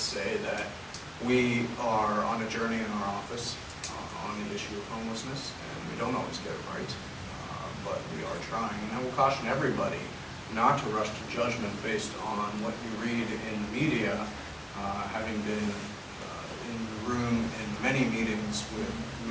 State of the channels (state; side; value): identical; both; correlation 1.00